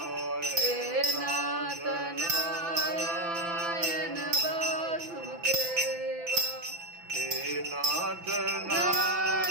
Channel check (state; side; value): late; left; 5.9 ms